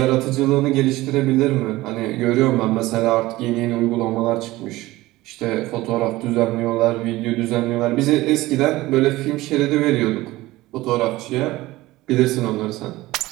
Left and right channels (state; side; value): quieter; left; 18.4 dB